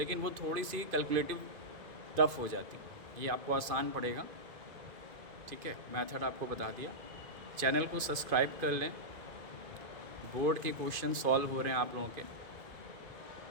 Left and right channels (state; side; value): late; left; 2.5 ms